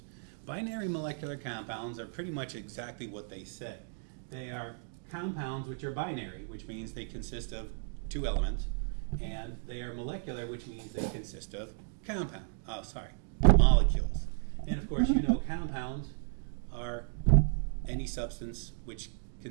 Binary molecular compounds are pretty much exactly what they say. They are compounds which are binary, which means they consist of two elements, and they are molecular, which means they consist of molecules. And of course, you know compounds are any substance which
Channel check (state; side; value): silent; left; digital silence